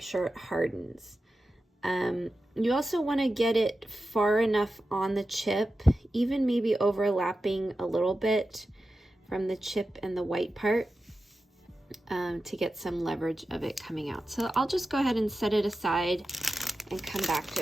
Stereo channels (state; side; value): normal; both; correlation 0.92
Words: sure it hardens. You also want to get it far enough on the chip, even maybe overlapping a little bit from the chip and the white part, to get some leverage of it coming out. So I'll just go ahead and set it aside and come back